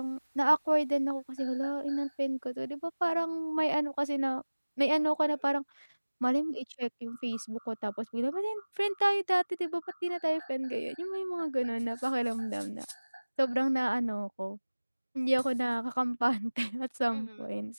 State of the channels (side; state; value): both; inverted; correlation -1.00